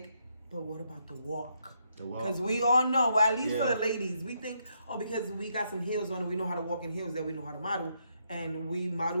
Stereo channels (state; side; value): inverted; both; correlation -0.77